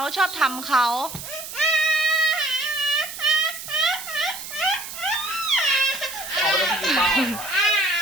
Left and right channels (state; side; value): noise; right; hiss, 10 dB below the sound